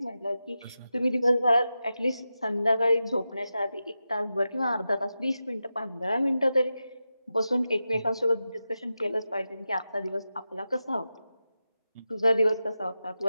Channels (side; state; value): both; inverted; correlation -0.91